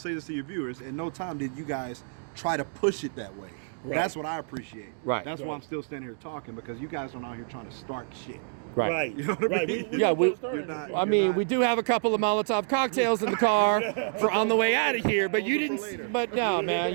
this to your viewers, at no time did you guys try to push it that way. Right. That's what I appreciate. Right. That's why I'm still standing here talking, because you guys aren't out here trying to start shit. Right. You know what I mean? You're not. We do have a couple of Molotov cocktails in the car for on the way out of here, but you didn't. But no, man,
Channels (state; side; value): silent; left; digital silence